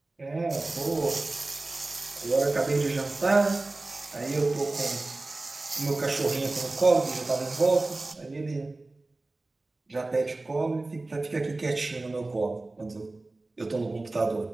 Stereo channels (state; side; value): quieter; left; 3.1 dB